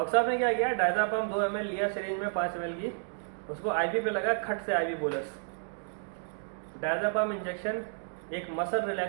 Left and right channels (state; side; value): silent; left; digital silence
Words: साहब ने क्या किया, डायज़ापम 2 ml लिया सिरिंज में 5 ml की, उसको आईवी पे लगा, खट से आईवी बोलस। डायज़ापम इंजेक्शन एक मसल